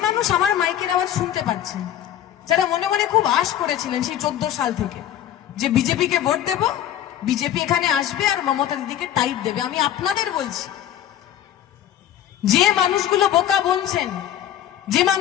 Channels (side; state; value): right; quieter; 11.2 dB